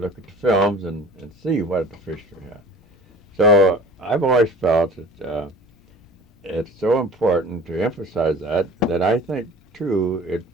at the films and see what the fish you have. So I've always felt that it's so important to emphasize that I think, too, it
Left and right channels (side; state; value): both; normal; correlation 0.42